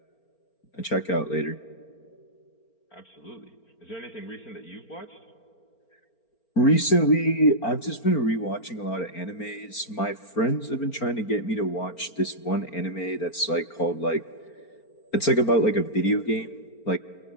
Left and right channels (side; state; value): right; late; 4.4 ms